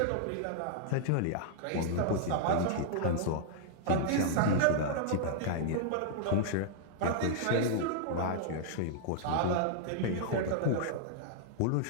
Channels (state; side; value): different; both; correlation -0.01